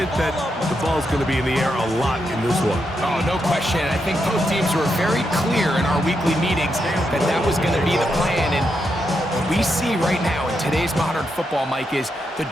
that the ball's going to be in the air a lot in this one. Oh, no question. I think both teams were very clear in our weekly meetings that that was going to be the plan. And what we see right now in today's modern football, Mike, is the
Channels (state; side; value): normal; both; correlation 0.83